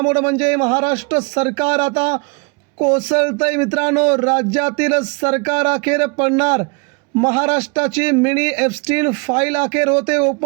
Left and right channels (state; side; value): quieter; left; 32.2 dB